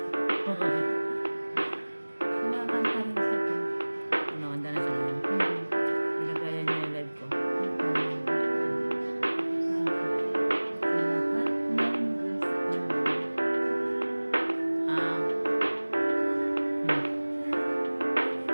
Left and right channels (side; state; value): both; inverted; correlation -1.00